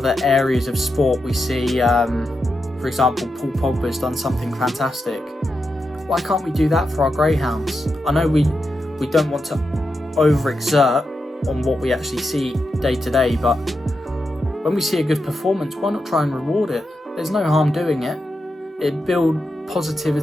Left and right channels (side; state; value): both; normal; correlation 0.87